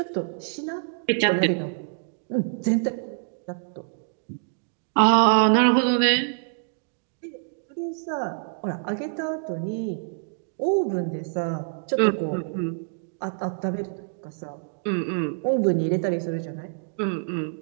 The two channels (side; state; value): left; silent; digital silence